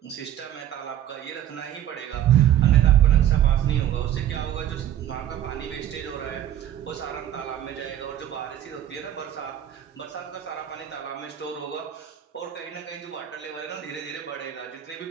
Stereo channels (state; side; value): quieter; left; 11.4 dB